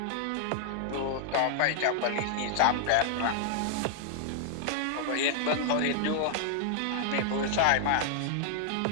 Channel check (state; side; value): different; both; correlation -0.01